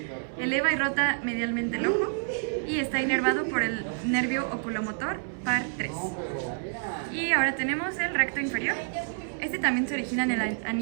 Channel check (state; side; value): silent; left; digital silence